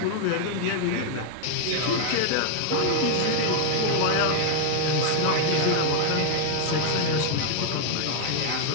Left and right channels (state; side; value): different; both; correlation 0.00